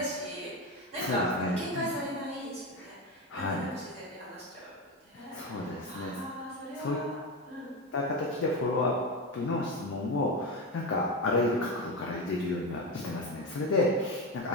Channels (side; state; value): both; normal; correlation 0.17